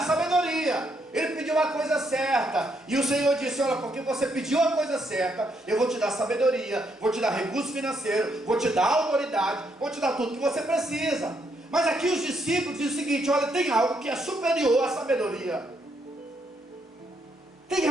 sabedoria. Ele pediu a coisa certa, e o Senhor disse: olha, porque você pediu a coisa certa, eu vou te dar sabedoria, vou te dar recurso financeiro, vou te dar autoridade, vou te dar tudo que você precisa. Mas aqui os discípulos dizem o seguinte: olha, tem algo que é superior à sabedoria, tem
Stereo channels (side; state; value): both; normal; correlation 0.75